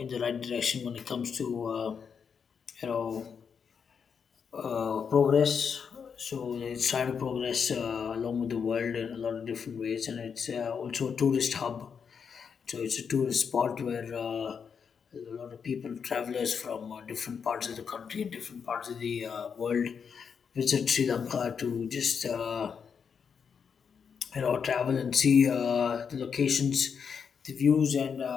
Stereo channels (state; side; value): quieter; right; 6.6 dB